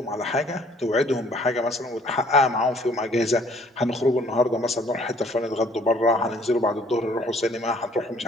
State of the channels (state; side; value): normal; both; correlation 0.58